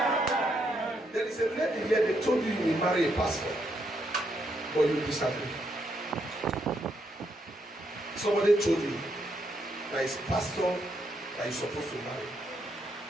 There is a lady here, they told you you will marry a pastor, but you disagree. Somebody told you that it's pastor that you're supposed to marry.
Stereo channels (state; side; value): normal; both; correlation 0.77